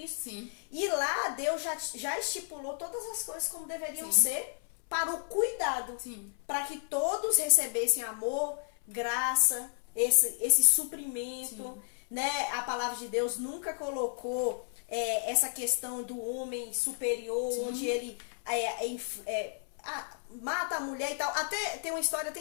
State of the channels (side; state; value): right; silent; 56 dB below the other